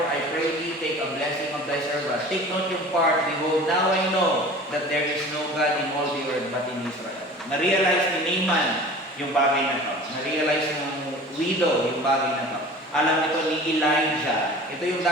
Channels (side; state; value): both; normal; correlation 0.41